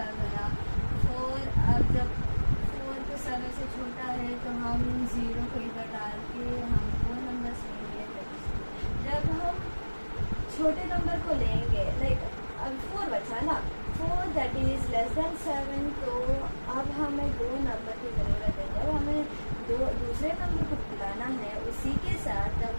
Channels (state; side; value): inverted; both; correlation -1.00